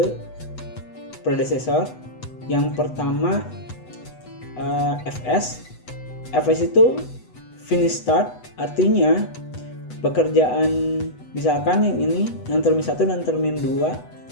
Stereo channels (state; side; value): late; right; 8.0 ms